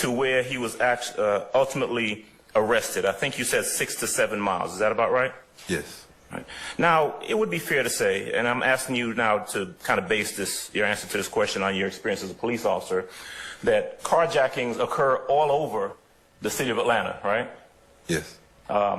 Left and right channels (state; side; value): identical; both; correlation 1.00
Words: where he was ultimately arrested. I think you said 6 to 7 miles. Is that about right? Yes. Right. Now, it would be fair to say, and I'm asking you now to kind of base your answer to this question on your experience as a police officer, that carjackings occur all over the city of Atlanta, right? Yes.